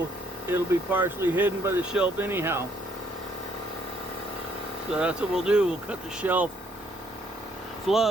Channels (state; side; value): normal; both; correlation 0.68